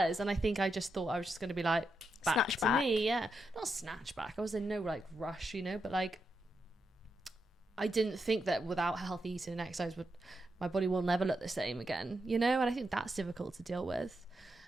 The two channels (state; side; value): normal; both; correlation 0.84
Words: And I think I just thought I was just going to be like, back to me. Yeah. Not snatch back. I was in no like rush, you know, but like, I didn't think that without healthy eating and exercise, my body will never look the same again, you know? And I think that's difficult to deal with.